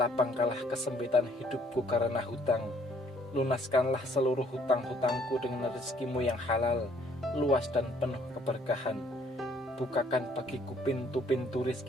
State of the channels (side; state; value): both; normal; correlation 0.63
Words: kesempitan hidupku karena hutang. Lunaskanlah seluruh hutang-hutangku dengan rezekimu yang halal, luas dan penuh keberkahan. Bukakan bagiku pintu-pintu